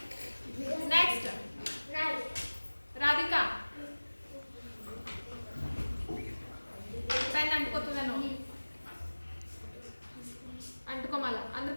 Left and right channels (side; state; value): both; inverted; correlation -1.00